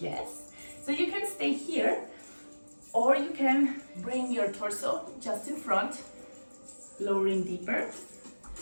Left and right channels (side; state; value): both; inverted; correlation -1.00